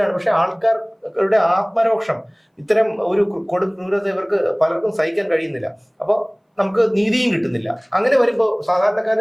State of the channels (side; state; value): both; identical; correlation 1.00